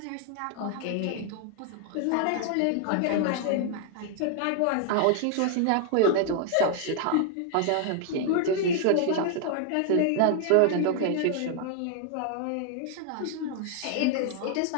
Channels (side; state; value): both; different; correlation 0.00